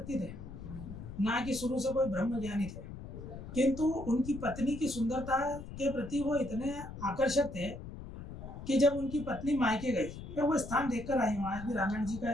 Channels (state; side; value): noise; left; rumble, 11 dB below the sound